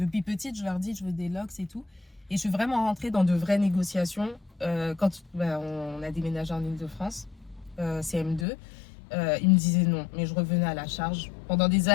petite, je leur dis je veux des LOX et tout. Et je suis vraiment rentrée dans de vraies négociations quand on a déménagé en Île-de-France, CM2. Ils me disaient non, mais je revenais à la charge. Pendant des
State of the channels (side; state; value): right; drops out; at 8.5 s